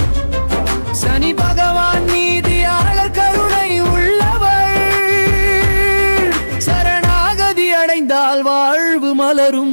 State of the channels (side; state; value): both; inverted; correlation -1.00